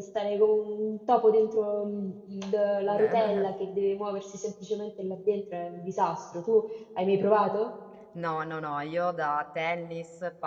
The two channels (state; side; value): identical; both; correlation 1.00